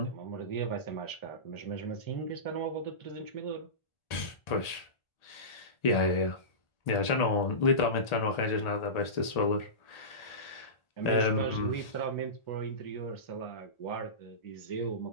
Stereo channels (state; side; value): late; right; 1.8 ms